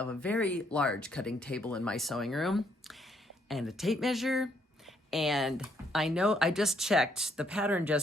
a very large cutting table in my sewing room and a tape measure. And I know I just checked, the pattern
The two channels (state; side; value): normal; both; correlation 0.71